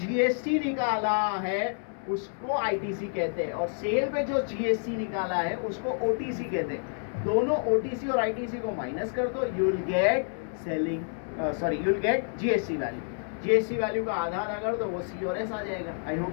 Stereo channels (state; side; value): silent; right; 59 dB below the other